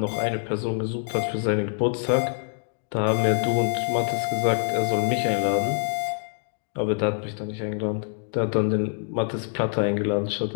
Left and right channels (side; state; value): right; silent; digital silence